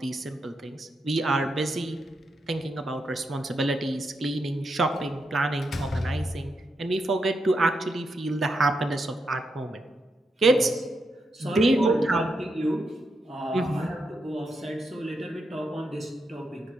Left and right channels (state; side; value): normal; both; correlation 0.83